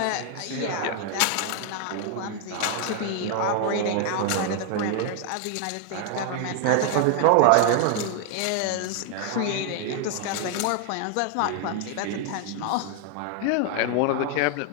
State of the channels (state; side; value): different; both; correlation 0.00